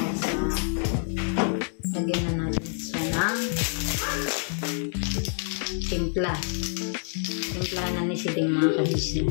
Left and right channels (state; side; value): silent; right; 60 dB below the other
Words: lagyan na natin siya ng timpla. Timpla na ni si Deng mga